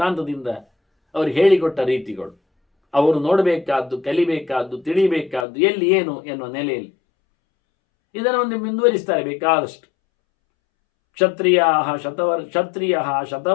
ಅವರು ಹೇಳಿಕೊಟ್ಟ ರೀತಿಗಳು. ಅವರು ನೋಡಬೇಕಾದ್ದು, ಕಲಿಬೇಕಾದ್ದು, ತಿಳಿಬೇಕಾದ್ದು ಎಲ್ಲಿ ಏನು ಎನ್ನುವ ನೆಲೆಯಲ್ಲಿ ಇದನ್ನು ಒಂದು ಮುಂದುವರಿಸ್ತಾರೆ ಬೇಕಾದಷ್ಟು. ಕ್ಷತ್ರಿಯ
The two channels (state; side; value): drops out; right; at 5.5 s